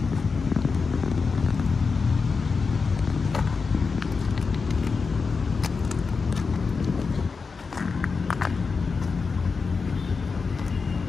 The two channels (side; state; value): right; quieter; 4.8 dB